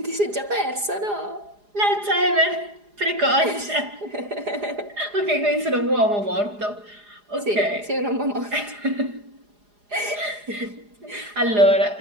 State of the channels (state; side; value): late; left; 4.8 ms